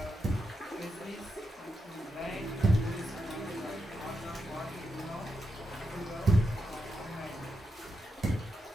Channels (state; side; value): normal; both; correlation 0.86